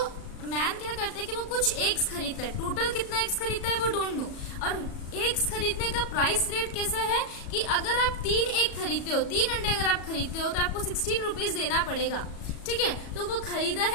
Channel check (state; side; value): late; right; 37 ms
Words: man क्या करता है कि वो कुछ eggs खरीदता है. टोटल कितना एग्स खरीदता है वो डोंट नो. और एग्स खरीदने का प्राइस रेट कैसा है कि अगर आप 3 एग खरीदते हो, 3 अंडे अगर आप खरीदते हो तो आपको 16 रुपीज देना पड़ेगा. ठीक है, तो वो खरीदा